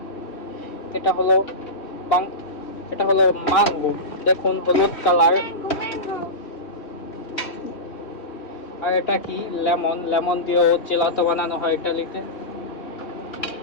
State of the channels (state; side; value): late; right; 3.1 ms